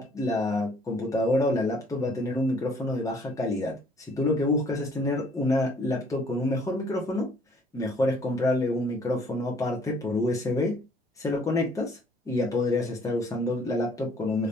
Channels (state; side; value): normal; both; correlation 0.60